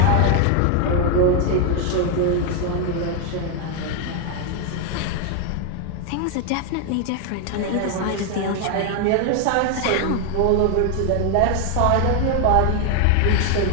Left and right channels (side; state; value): both; different; correlation 0.01